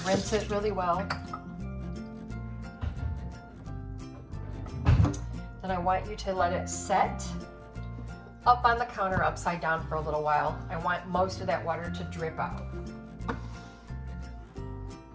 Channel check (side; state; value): both; identical; correlation 1.00